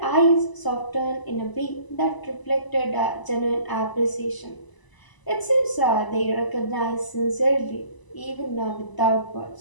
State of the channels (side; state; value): right; late; 1.0 ms